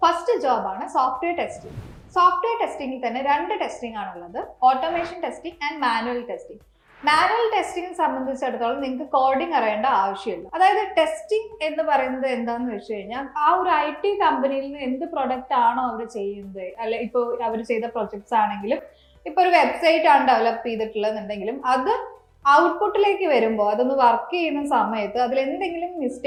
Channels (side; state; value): both; identical; correlation 1.00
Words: First ജോബാണ് സോഫ്റ്റ്വെയർ ടെസ്റ്റിംഗ്. സോഫ്റ്റ്വെയർ ടെസ്റ്റിംഗിൽ തന്നെ രണ്ട് ടെസ്റ്റിംഗ് ആണുള്ളത്, automation testing and manual testing. Manual testing സംബന്ധിച്ചിടത്തോളം നിങ്ങൾക്ക് കോഡിംഗ് അറിയേണ്ട ആവശ്യമില്ല. അതായത് ടെസ്റ്റിംഗ് എന്ന് പറയുന്നത് എന്താന്ന് വെച്ച് കഴിഞ്ഞാൽ ആ ഒരു IT കമ്പനിയിൽ നിന്ന് എന്ത് പ്രൊഡക്റ്റ് ആണോ അവർ ചെയ്യുന്നത്, അല്ലെ ഇപ്പോൾ അവർ ചെയ്ത പ്രൊജക്ട്സ് ആണെങ്കിലും ഇപ്പോൾ ഒരു വെബ്സൈറ്റ് ആണ് ഡെവലപ്പ് ചെയ്തിട്ടുള്ളതെന്നുണ്ടെങ്കിലും അത് ഔട്ട്പുട്ടിലേക്ക് വരുമ്പോൾ അതൊന്ന് വർക്ക് ചെയ്യുന്ന സമയത്ത് അതിൽ എന്തെങ്കിലും